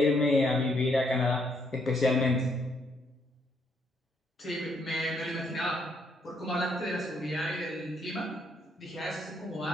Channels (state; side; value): normal; both; correlation 0.72